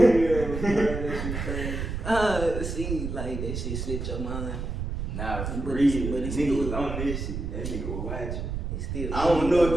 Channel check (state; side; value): noise; right; rumble, 4 dB below the sound